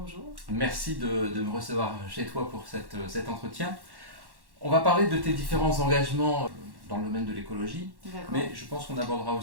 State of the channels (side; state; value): left; late; 1.1 ms